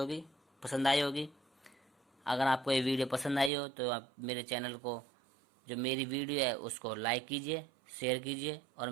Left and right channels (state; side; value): drops out; left; at 3.5 s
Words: पसंद आई होगी। अगर आपको ये वीडियो पसंद आई हो तो आप मेरे चैनल को, जो मेरी वीडियो है उसको लाइक कीजिए, शेयर कीजिए और